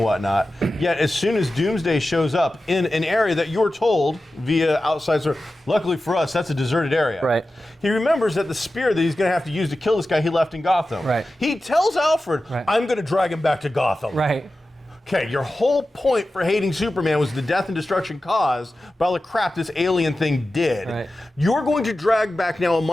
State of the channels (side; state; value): both; normal; correlation 0.94